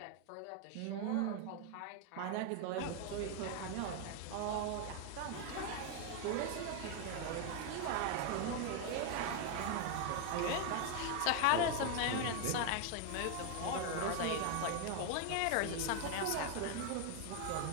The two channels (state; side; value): different; both; correlation 0.01